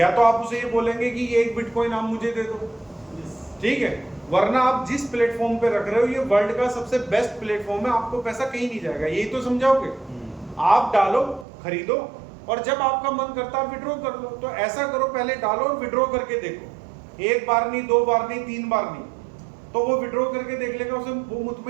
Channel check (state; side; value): drops out; left; at 11.5 s